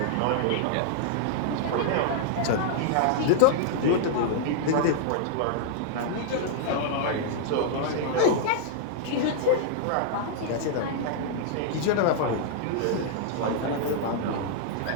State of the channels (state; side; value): different; both; correlation -0.01